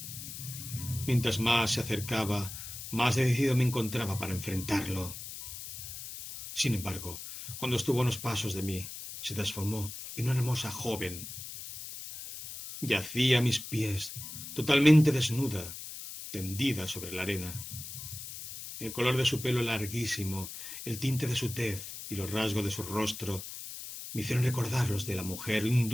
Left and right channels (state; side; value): noise; left; hiss, 10 dB below the sound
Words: Mientras más se acercaba, más decidido me encontraba para enfrentarlo. Sin embargo, cuando estuvo a unos pasos de mí, se transformó en una hermosa joven. Yacía a mis pies, totalmente desnuda, tendida sobre la arena. El color de su pelo larguísimo, el tinte de su tez y los rasgos de su rostro me hicieron recordar los de la mujer